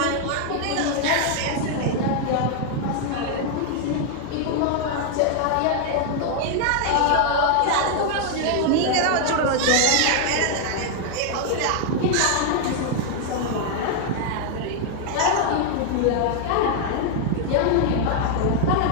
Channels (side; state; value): both; different; correlation 0.00